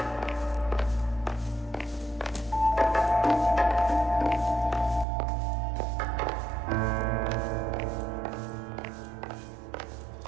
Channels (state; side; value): drops out; left; at 5.1 s